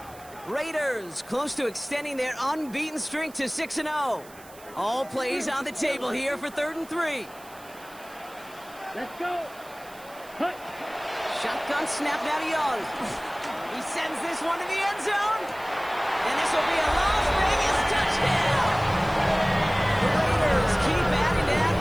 Raiders close to extending their unbeaten streak to 6-0. All plays on the table here for 3rd and 3. Let's go. Hut. Shotgun snap now to Young. He sends this one to the end zone. And this will be a Las Vegas touchdown. The Raiders keep adding to that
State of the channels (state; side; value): noise; right; hiss, 22 dB below the sound